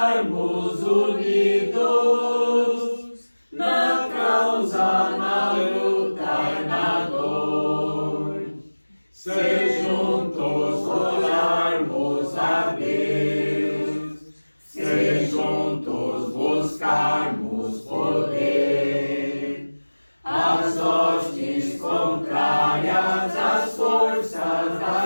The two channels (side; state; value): both; inverted; correlation -1.00